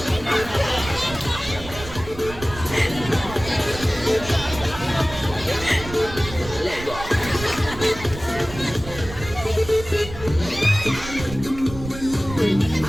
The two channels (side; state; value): right; noise; rumble, 12 dB below the sound